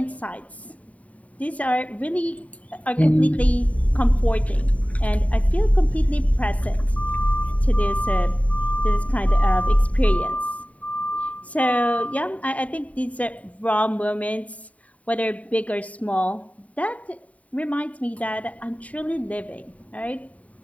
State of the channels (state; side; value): late; right; 0.068 ms